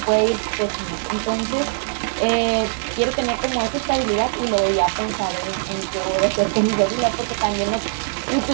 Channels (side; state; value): left; silent; digital silence